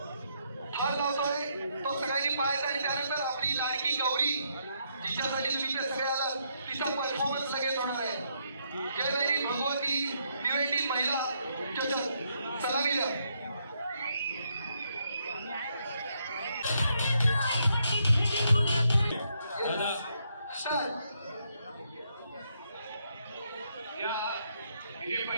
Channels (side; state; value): both; inverted; correlation -0.76